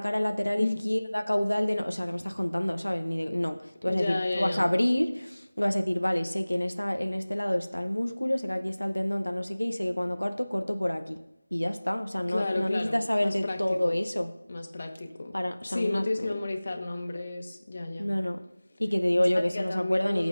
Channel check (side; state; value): both; inverted; correlation -0.99